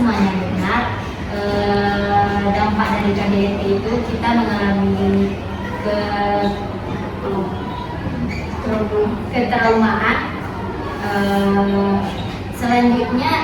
benar. Dampak dari KDRT itu kita mengalami ketraumaan. Selanjutnya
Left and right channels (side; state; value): both; identical; correlation 1.00